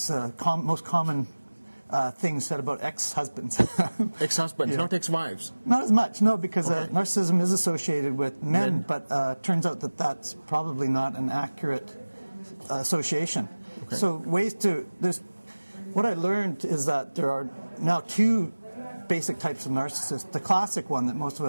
most common thing said about ex-husbands. Ex-husbands, Yeah. not ex-wives. Not as much, no, because Okay. narcissism is associated with men. But turns out that that's probably not an accurate association. Okay. So what I learned is that there are now two basic types of narcissists. The classic one that most of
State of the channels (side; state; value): both; inverted; correlation -1.00